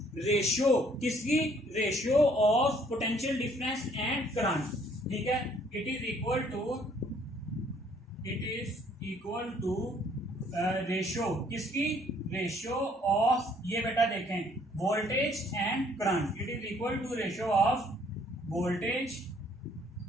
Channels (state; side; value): normal; both; correlation 0.62